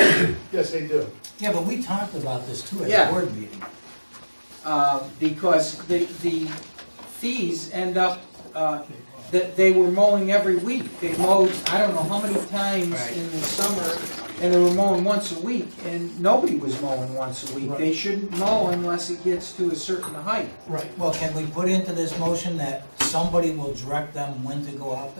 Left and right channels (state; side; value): inverted; both; correlation -1.00